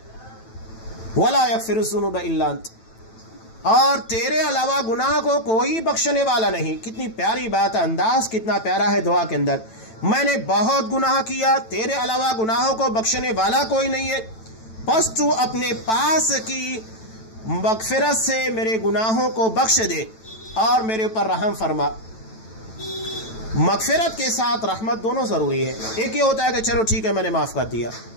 وَلَا يَغْفِرُ الذُّنُوبَ إِلَّا أَنْتَ، اور تیرے علاوہ گناہ کو کوئی بخشنے والا نہیں. کتنی پیاری بات ہے، انداز کتنا پیارا ہے دعا کے اندر. میں نے بہت گناہ کیا، تیرے علاوہ گناہوں کو بخشنے والا کوئی نہیں ہے، بس تو اپنے پاس کی مغفرت سے میرے گناہوں کو بخش دے اور میرے اوپر رحم فرما. مغفرت کے ساتھ رحمت دونوں ضروری ہے. ایک یہ ہوتا ہے کہ چلو ٹھیک ہے میں نے معاف کر دیا،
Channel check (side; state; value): right; late; 9.1 ms